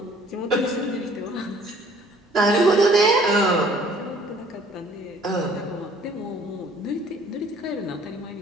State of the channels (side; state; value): both; normal; correlation 0.56